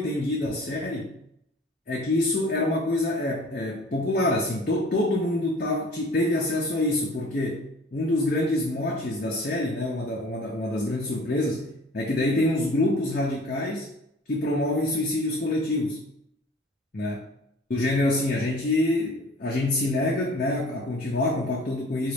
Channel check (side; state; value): both; normal; correlation 0.47